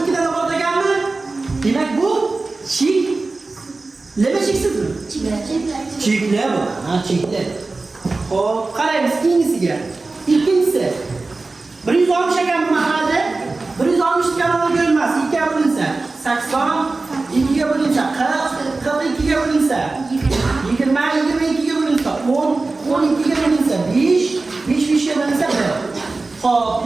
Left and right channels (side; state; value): left; quieter; 3.6 dB